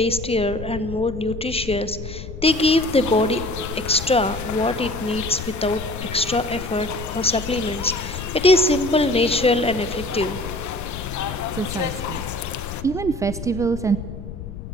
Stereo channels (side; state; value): left; noise; rumble, 10 dB below the sound